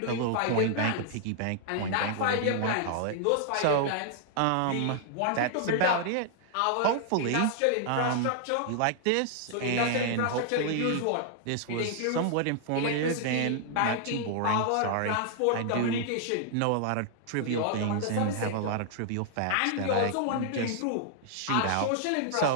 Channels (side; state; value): both; different; correlation -0.01